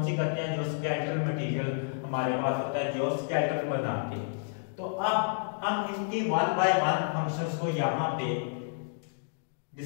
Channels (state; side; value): silent; right; digital silence